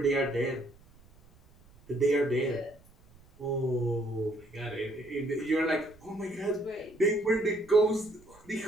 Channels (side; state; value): right; noise; rumble, 26 dB below the sound